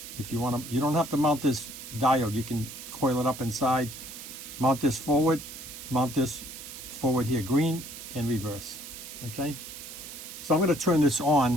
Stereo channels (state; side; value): noise; right; hiss, 12 dB below the sound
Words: If you want to, you don't have to mount this diode. You can coil it up inside. Mount this forward here, green and reverse. Okay? So I'm going to turn this